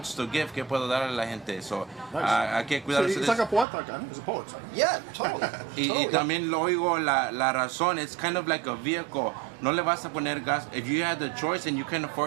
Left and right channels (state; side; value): drops out; left; at 3.7 s